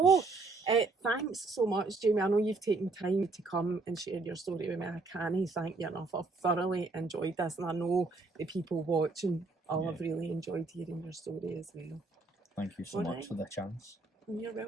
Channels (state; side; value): quieter; left; 3.6 dB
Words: Thanks so much, Jamie. I know you've taken time to come and share your story with me. I can't thank you enough. I've thoroughly enjoyed this, and I know the people watching all have really enjoyed hearing your story as well. Thank you so much for the chance. You're